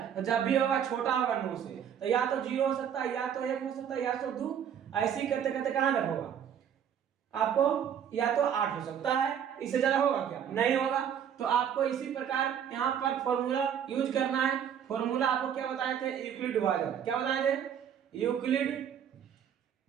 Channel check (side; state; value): left; quieter; 8.8 dB